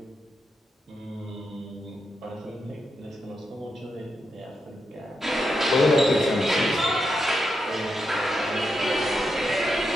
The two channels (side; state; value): both; normal; correlation 0.85